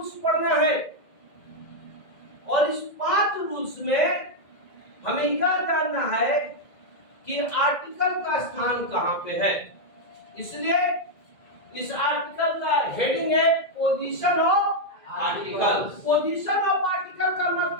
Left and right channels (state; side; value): late; right; 2.0 ms